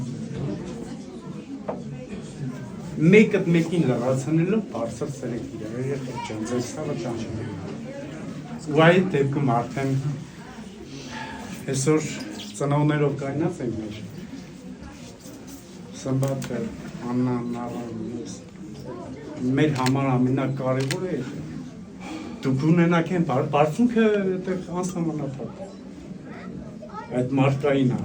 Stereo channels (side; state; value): both; identical; correlation 1.00